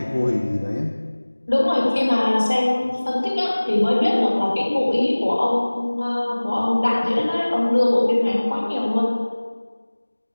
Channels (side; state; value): both; inverted; correlation -1.00